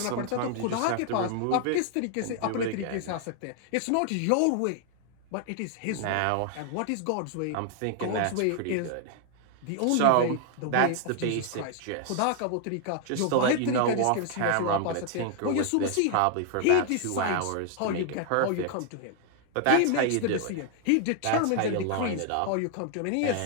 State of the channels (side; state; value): both; different; correlation 0.00